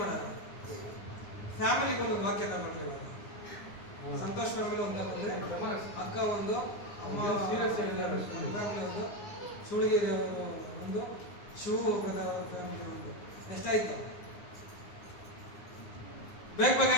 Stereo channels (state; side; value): late; right; 9.8 ms